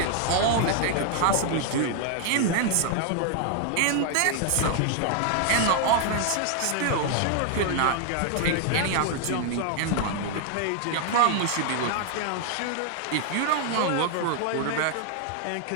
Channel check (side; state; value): both; different; correlation 0.00